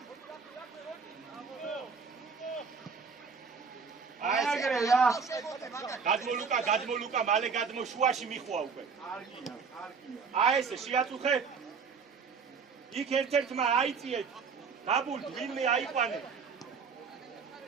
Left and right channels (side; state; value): left; quieter; 5.5 dB